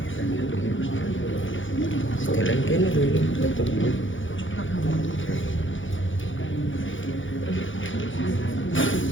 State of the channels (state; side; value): late; right; 0.56 ms